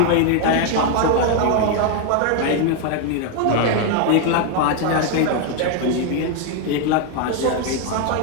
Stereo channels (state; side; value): different; both; correlation 0.01